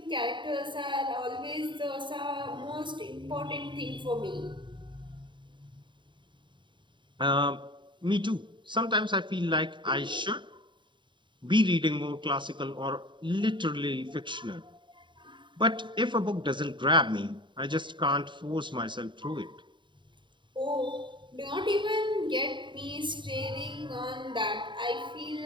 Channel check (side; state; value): left; late; 0.23 ms